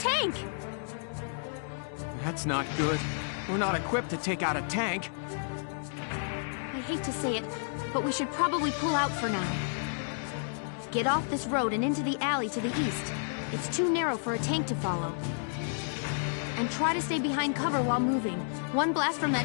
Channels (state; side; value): silent; right; digital silence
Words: tank! That's not good. We're not equipped to take out a tank. I hate to say it, but we should probably pull out for now. Get off this road and into the alley to the east. It's too narrow for a tank to follow. And try to stay behind cover while moving. One blast from